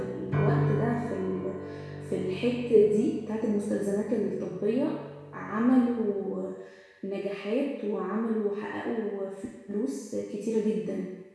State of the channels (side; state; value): both; identical; correlation 1.00